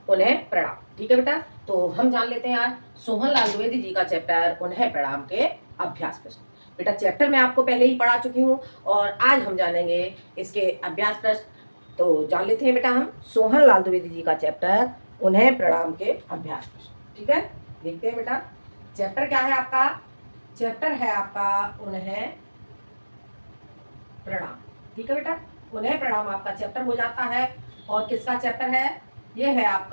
उन्हें प्रणाम। ठीक है बेटा, तो हम जान लेते हैं आज सोहन लाल द्विवेदी जी का चैप्टर उन्हें प्रणाम के अभ्यास प्रश्न। बेटा चैप्टर मैं आपको पहले ही पढ़ा चुकी हूँ और आज हम जानेंगे इसके अभ्यास प्रश्न। तो जान लेते हैं बेटा हम सोहन लाल द्विवेदी जी का चैप्टर उन्हें प्रणाम के अभ्यास प्रश्न। ठीक है, देखते हैं बेटा चैप्टर क्या है आपका। चैप्टर है आपका उन्हें प्रणाम। ठीक है बेटा, उन्हें प्रणाम आपका चैप्टर हो जाता है। और किसका चैप्टर है? ये है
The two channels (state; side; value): inverted; both; correlation -1.00